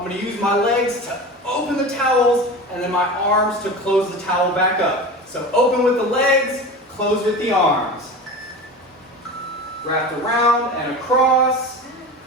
going to use my legs to open the towels and then my arms to close the towel back up. So open with the legs, close with the arms. Wrapped around and across.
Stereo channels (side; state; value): both; normal; correlation 0.31